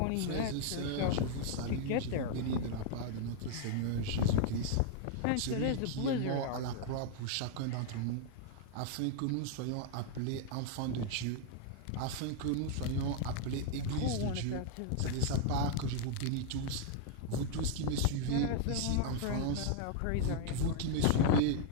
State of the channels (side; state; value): both; different; correlation 0.00